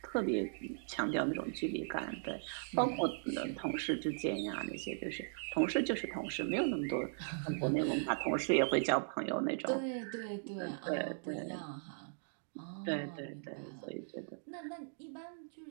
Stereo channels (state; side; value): silent; left; digital silence